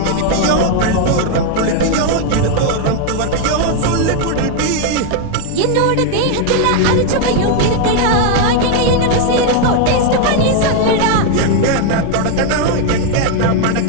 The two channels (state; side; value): different; both; correlation 0.00